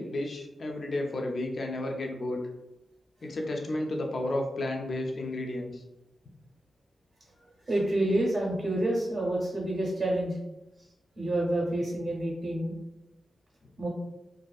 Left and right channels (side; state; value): both; normal; correlation 0.89